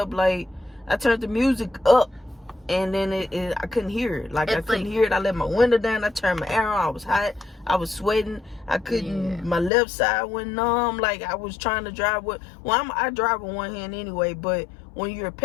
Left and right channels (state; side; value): drops out; right; at 9.7 s